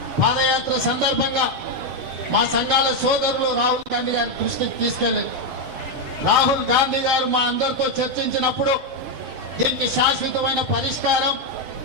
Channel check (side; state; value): left; late; 7.0 ms